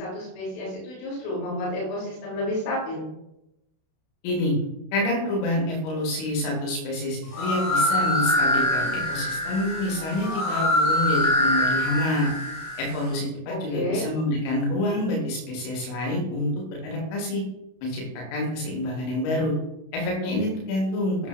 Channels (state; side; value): late; right; 32 ms